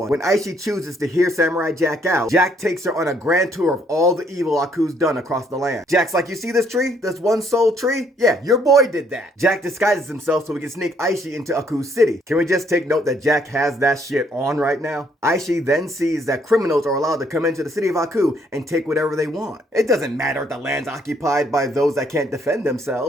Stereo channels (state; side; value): normal; both; correlation 0.67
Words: When Ashi chooses to hear Samurai Jack out, Jack takes her on a grand tour of all the evil Aku's done across the land. Jack's like, you see this tree? This one soul tree? Yeah, your boy did that. Jack disguises himself so he can sneak Ashi into Aku's city. Can we just take note that Jack has that shit on right now? Ashi then sees that criminals are allowed to come into the city of Aku and take whatever they want. It doesn't matter if the land's occupied by those that can't defend